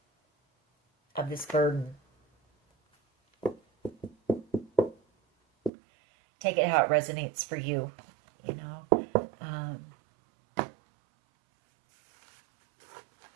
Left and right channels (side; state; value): left; drops out; at 5.7 s